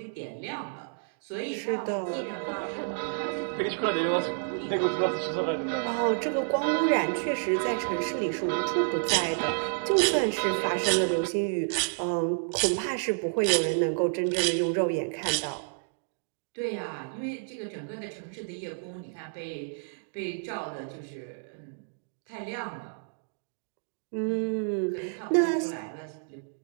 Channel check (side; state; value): left; silent; digital silence